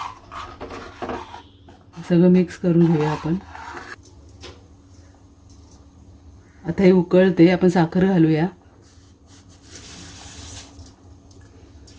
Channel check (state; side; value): identical; both; correlation 1.00